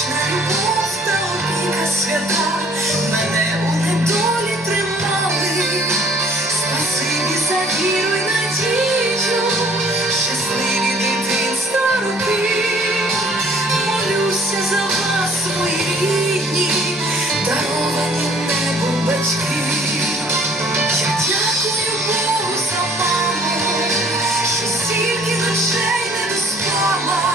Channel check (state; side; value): normal; both; correlation 0.56